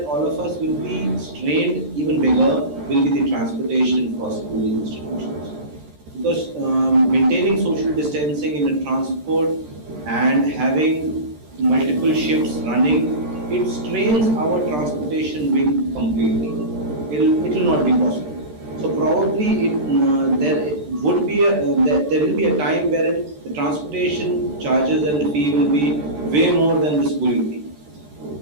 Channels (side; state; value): left; late; 13 ms